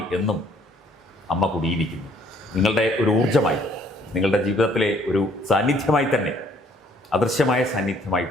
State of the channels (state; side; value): normal; both; correlation 0.62